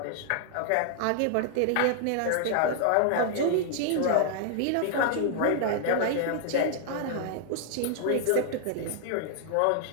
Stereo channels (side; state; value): both; different; correlation -0.01